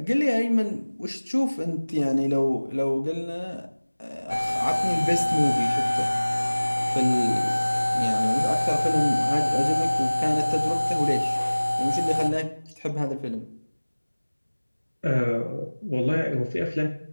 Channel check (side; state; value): both; inverted; correlation -1.00